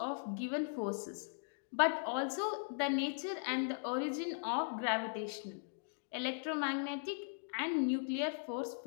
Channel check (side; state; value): right; silent; digital silence